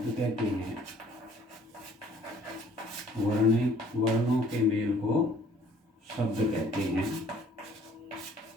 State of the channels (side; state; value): both; normal; correlation 0.57